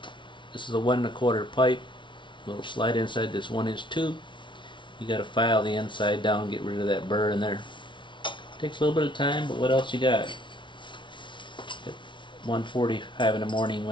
this is a 1 1/4 pipe, little slide inside this 1-inch tube. You got to file the inside down, get rid of that burr in there. Takes a little bit of time, but what else you got? At 1:45 in the morning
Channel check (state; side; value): late; right; 0.24 ms